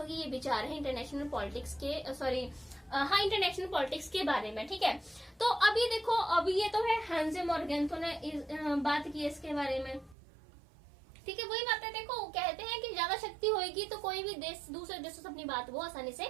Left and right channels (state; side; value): drops out; left; at 10.2 s